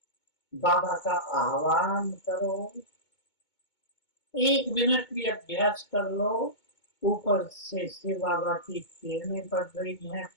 बाबा का आह्वान करो, 1 मिनट भी अभ्यास कर लो। ऊपर से शिव बाबा की किरणें पड़ रही हैं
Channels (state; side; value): late; right; 2.2 ms